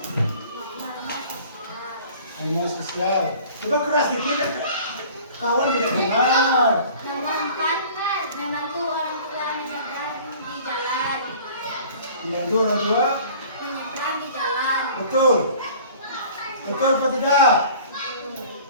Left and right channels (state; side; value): inverted; both; correlation -0.47